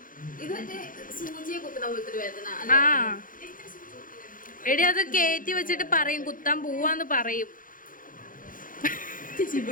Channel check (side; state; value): right; late; 0.40 ms